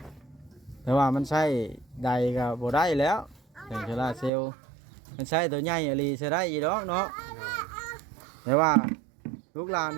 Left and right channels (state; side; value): drops out; left; at 4.3 s